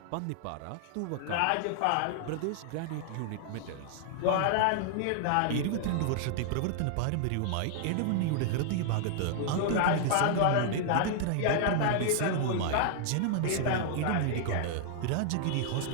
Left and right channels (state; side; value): different; both; correlation -0.01